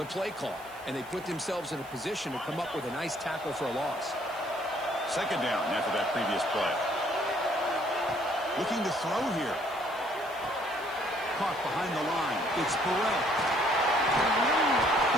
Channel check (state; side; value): noise; right; hiss, 23 dB below the sound